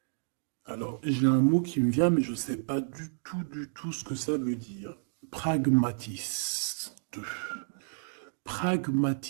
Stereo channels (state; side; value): silent; left; digital silence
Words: Alors, j'ai un mot qui me vient, mais je ne sais pas du tout ce que ça veut dire. Pragmatiste.